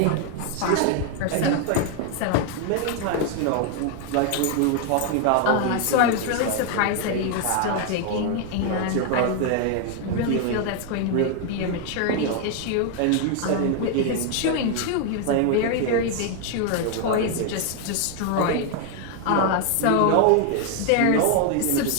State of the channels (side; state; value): both; different; correlation 0.00